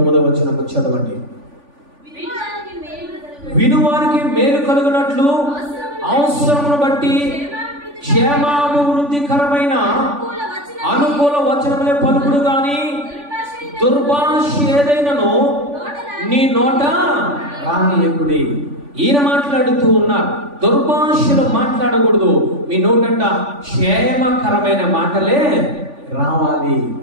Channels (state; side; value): late; left; 3.5 ms